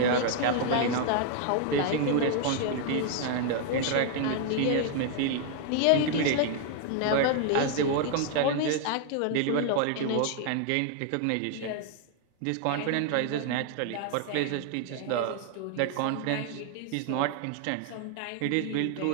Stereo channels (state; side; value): different; both; correlation 0.00